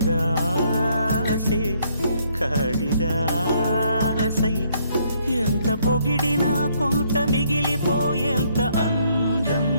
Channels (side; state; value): both; inverted; correlation -0.68